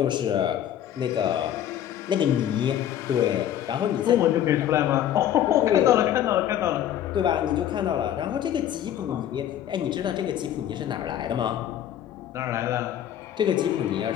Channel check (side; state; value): right; quieter; 10.9 dB